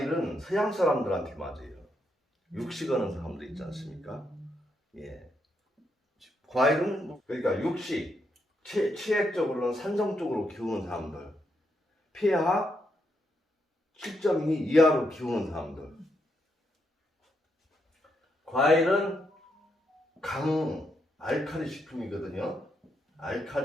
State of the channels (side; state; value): both; normal; correlation 0.79